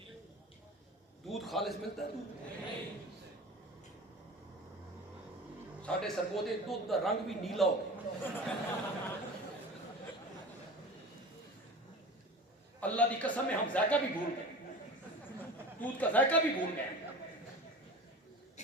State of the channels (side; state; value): both; normal; correlation 0.35